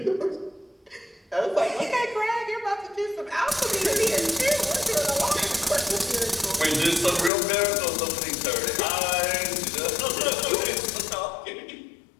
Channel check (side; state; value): right; drops out; at 7.3 s